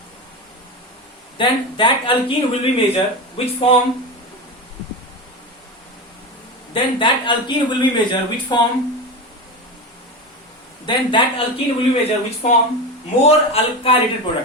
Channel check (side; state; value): both; normal; correlation 0.21